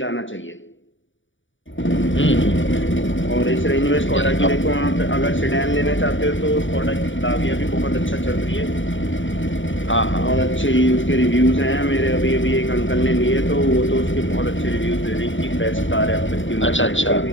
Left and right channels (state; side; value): late; right; 0.56 ms